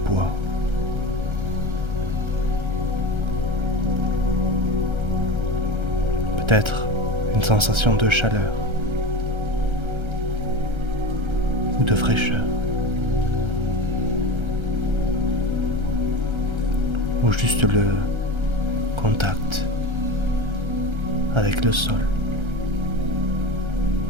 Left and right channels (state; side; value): late; left; 1.3 ms